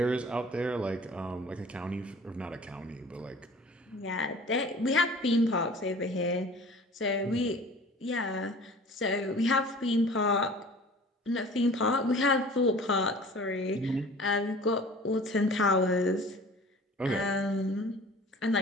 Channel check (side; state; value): both; normal; correlation 0.45